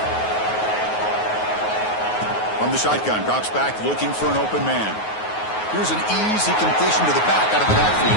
From the shotgun, drops back, looking for an open man. Here's an easy completion to the back out of the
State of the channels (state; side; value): late; right; 9.4 ms